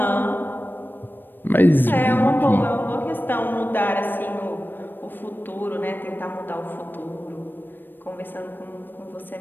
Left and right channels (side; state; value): right; late; 0.094 ms